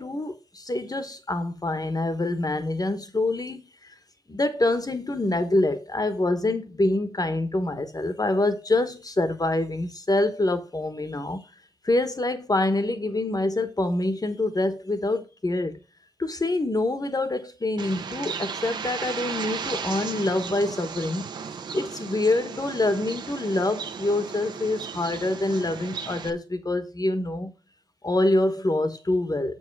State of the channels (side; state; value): both; normal; correlation 0.79